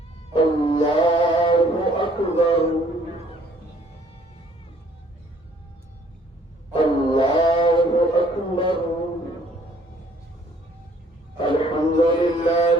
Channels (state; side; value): normal; both; correlation 0.60